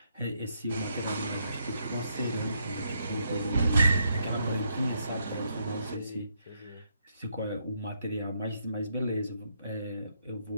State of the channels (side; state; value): both; inverted; correlation -0.76